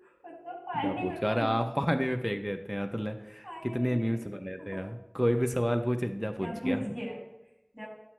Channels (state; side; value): identical; both; correlation 1.00